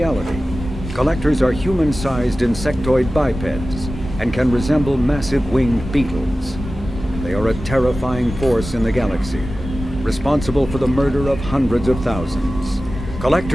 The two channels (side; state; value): both; normal; correlation 0.95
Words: Collectors are human-sized insectoid bipeds and can resemble massive winged beetles. They are a terrifying force in the galaxy, responsible for the murder of hundreds of thousands.